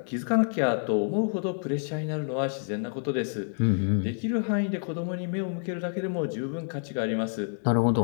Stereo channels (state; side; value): silent; right; 59 dB below the other